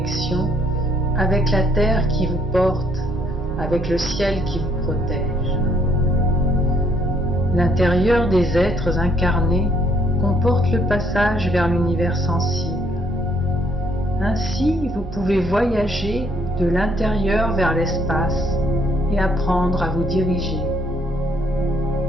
avec la terre qui vous porte, avec le ciel qui vous protège. L'intérieur des êtres incarnés comporte le passage vers l'univers sensible. Ainsi, vous pouvez voyager de l'intérieur vers l'espace et apprendre à vous diriger.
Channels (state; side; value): normal; both; correlation 0.67